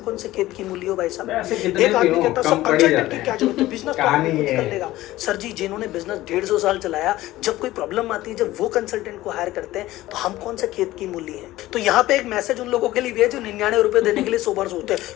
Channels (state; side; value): quieter; right; 16.4 dB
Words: कौन से खेत की मूल्य हो भाई साहब। एक आदमी कहता सब कंसल्टेंट की क्या जरूरत है, बिजनेस तो आदमी कर लेगा। सर जी जिन्होंने बिजनेस 150 साल चलाया, जब कोई प्रॉब्लम आती है, जब वो कंसल्टेंट को हायर करते हैं तो हम कौन से खेत की मूल्य है। तो यहाँ पे एक मैसेज उन लोगों के लिए भी है जो 99 रुपए देने के लिए 100 बार सोचते हैं